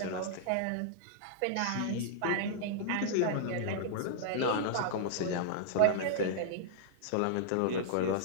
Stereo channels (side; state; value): both; different; correlation -0.02